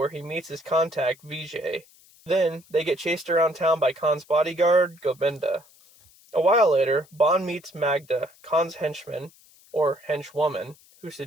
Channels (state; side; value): noise; left; hiss, 27 dB below the sound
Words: he meets his contact, Vijay. Then, they get chased around town by Khan's bodyguard, Govinda. A while later, Bond meets Magda, Khan's henchman, or henchwoman, who